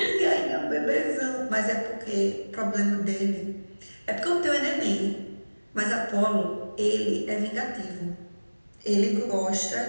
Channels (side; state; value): both; inverted; correlation -1.00